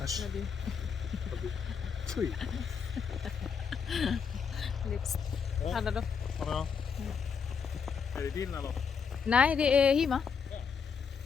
Äsch. Ja, du. Fy. Lips. Ja. Hade du? Ja. Är det din eller? Nej, det är Hima.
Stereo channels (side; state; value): right; quieter; 6.2 dB